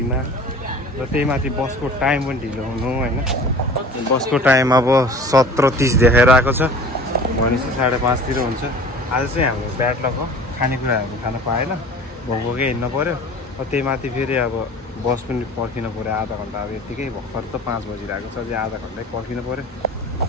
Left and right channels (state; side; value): normal; both; correlation 0.43